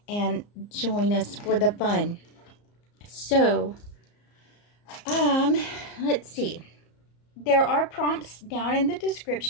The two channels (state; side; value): late; right; 34 ms